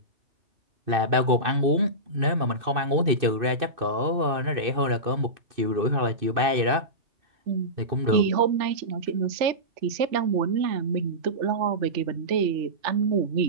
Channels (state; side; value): late; left; 2.6 ms